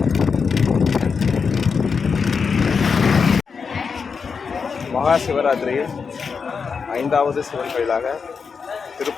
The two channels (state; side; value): quieter; right; 5.6 dB